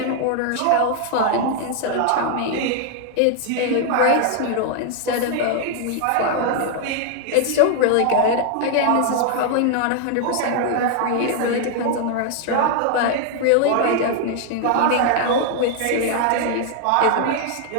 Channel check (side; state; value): both; different; correlation 0.00